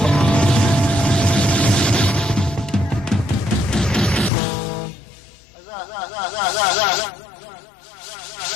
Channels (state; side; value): drops out; right; at 4.3 s